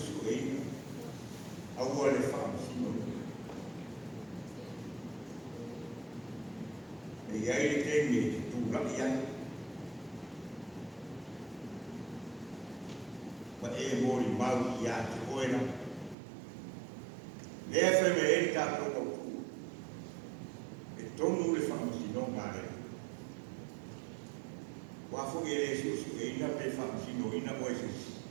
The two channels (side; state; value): left; drops out; at 16.2 s